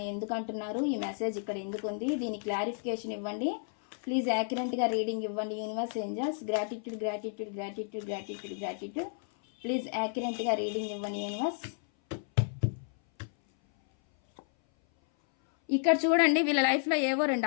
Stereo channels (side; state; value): right; silent; 56 dB below the other